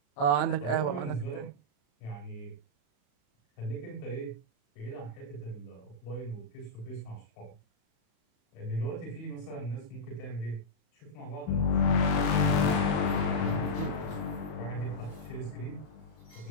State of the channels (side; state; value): right; late; 34 ms